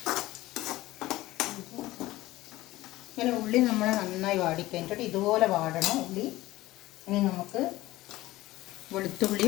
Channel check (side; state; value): right; quieter; 17.3 dB